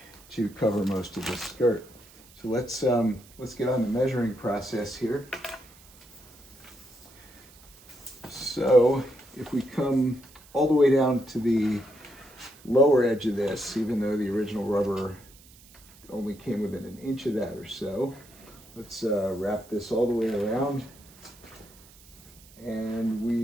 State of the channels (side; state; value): right; noise; hiss, 24 dB below the sound